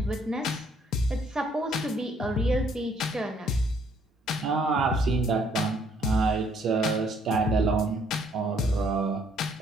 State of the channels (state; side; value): normal; both; correlation 0.65